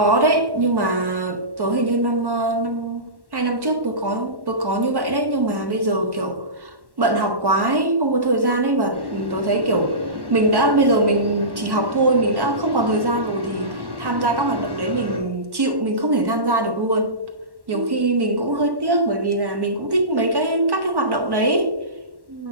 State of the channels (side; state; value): left; late; 1.1 ms